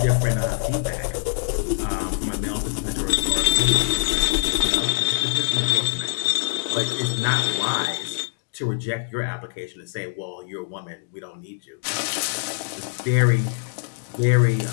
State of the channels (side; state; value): right; silent; digital silence